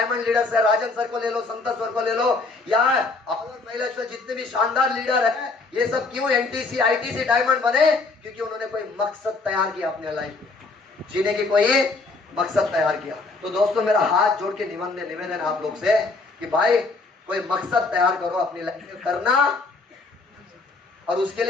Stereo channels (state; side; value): quieter; right; 3.7 dB